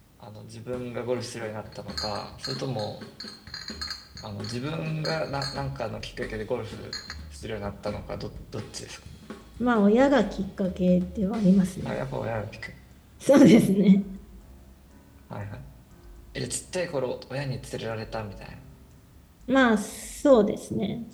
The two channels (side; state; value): both; identical; correlation 1.00